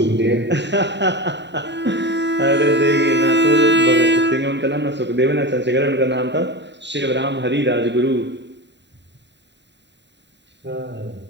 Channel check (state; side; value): late; left; 0.52 ms